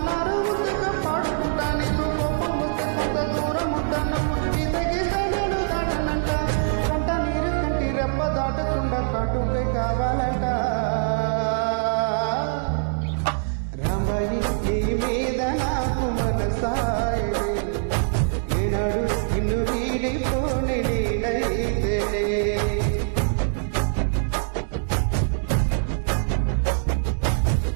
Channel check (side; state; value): left; silent; digital silence